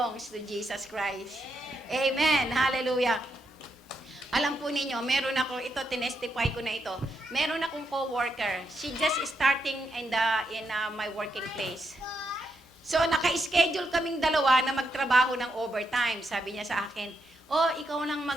to Jesus Christ. Amen. Hallelujah. Alam po ninyo, meron ako, tinestify ko na ito. Meron akong co-worker. She just starting in my working place. So, naka-schedule kaming dalawa na magtrabaho ng overtime. Sabi niya sa akin, ikaw nang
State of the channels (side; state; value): both; normal; correlation 0.81